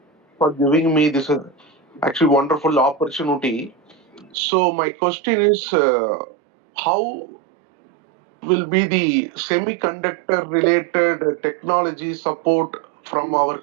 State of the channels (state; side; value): drops out; left; at 4.4 s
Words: for giving me this actually wonderful opportunity. So my question is, how will be the semiconductor related technology support from our